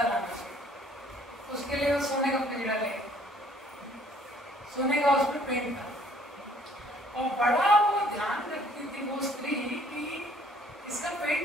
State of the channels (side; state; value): both; normal; correlation 0.59